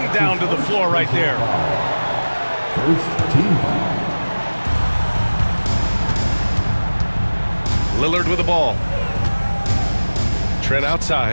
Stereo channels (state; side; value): inverted; both; correlation -1.00